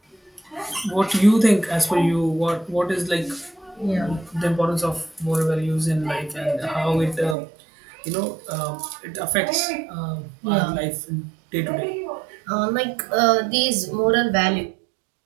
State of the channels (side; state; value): left; drops out; at 7.4 s